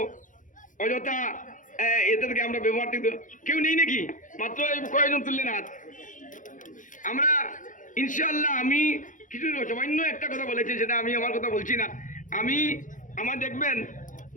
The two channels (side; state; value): right; late; 0.38 ms